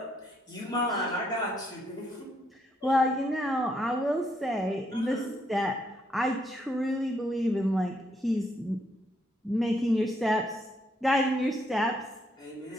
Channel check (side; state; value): both; normal; correlation 0.74